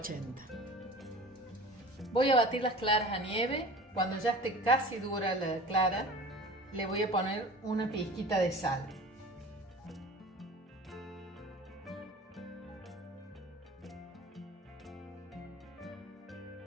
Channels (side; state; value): both; normal; correlation 0.40